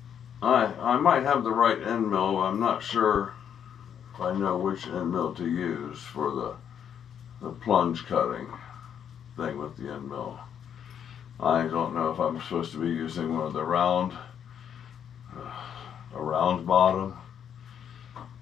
I might have the right end mill. I'm not sure if I know which end mill to use for the plunge cutting thing with the end mill. I don't know if I'm supposed to be using one of the round bottom.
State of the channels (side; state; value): right; quieter; 8.6 dB